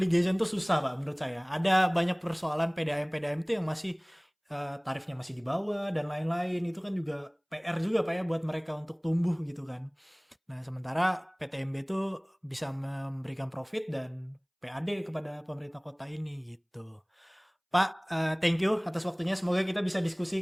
tuh susah Pak menurut saya. Ada banyak persoalan PDAM itu yang masih tarifnya masih di bawah dan lain-lain. Itu kan juga PR juga Pak ya buat mereka untuk tumbuh gitu kan. Nah sementara PTMB itu bisa memberikan profit dan PAD kepada pemerintah kota ini gitu. Pak, thank you atas waktunya. Semoga kita bisa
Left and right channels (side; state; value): both; identical; correlation 1.00